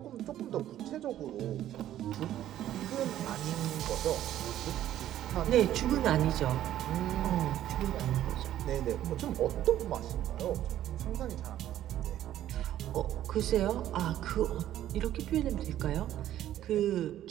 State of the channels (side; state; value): left; quieter; 12.4 dB